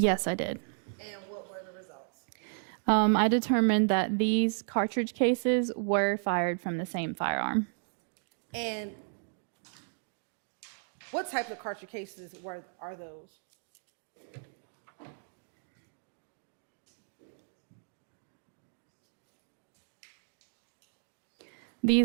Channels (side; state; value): left; silent; digital silence